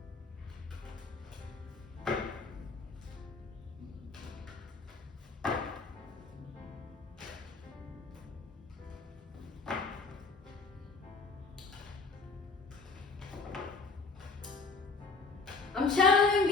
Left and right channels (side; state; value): right; quieter; 4.1 dB